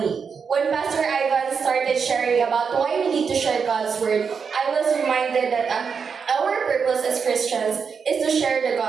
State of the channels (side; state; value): left; quieter; 6.0 dB